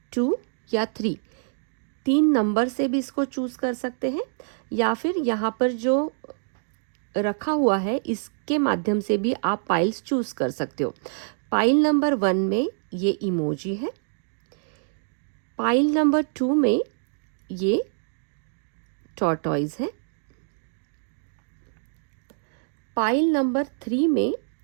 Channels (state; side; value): silent; left; digital silence